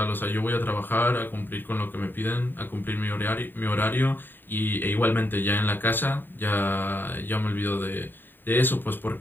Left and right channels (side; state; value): right; late; 0.093 ms